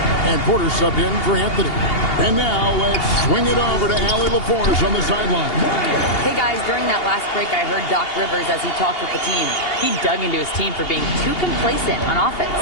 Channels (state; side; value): late; right; 2.8 ms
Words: And Porter subbed in for Anthony. And now let's swing it over to Allie LaForce on the sideline. Hey guys, during that last break, I heard Doc Rivers as he talked with the team. He dug into his team for being too complacent on offense,